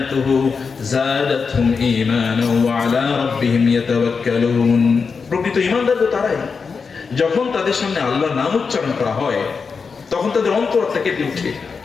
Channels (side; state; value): right; quieter; 5.2 dB